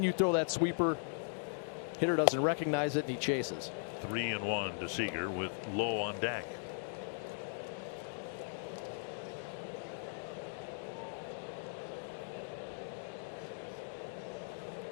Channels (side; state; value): right; silent; digital silence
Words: you throw that sweeper. Hitter doesn't recognize it, and he chases. 3-1 to Seager with Lowe on deck.